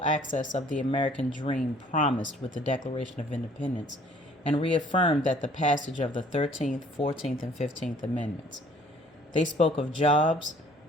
access of the American dream promised with the Declaration of Independence, and reaffirmed that the passage of the 13th, 14th, and 15th Amendments. They spoke of jobs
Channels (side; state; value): both; normal; correlation 0.56